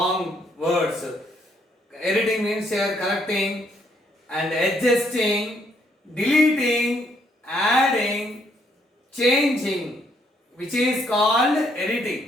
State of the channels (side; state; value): both; normal; correlation 0.71